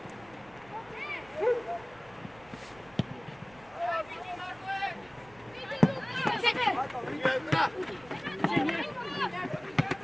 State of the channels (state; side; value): noise; right; rumble, 25 dB below the sound